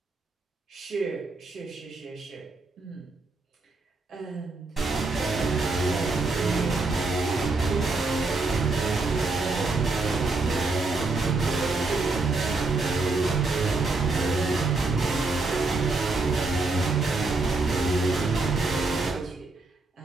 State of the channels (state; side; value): quieter; left; 3.5 dB